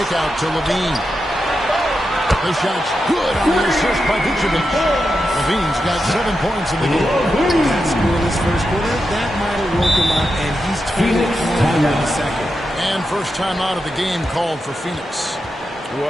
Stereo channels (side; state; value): both; normal; correlation 0.88